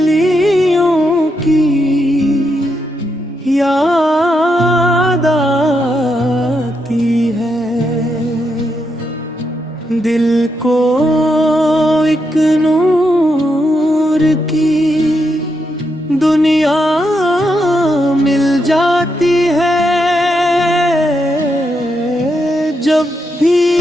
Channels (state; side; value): normal; both; correlation 0.82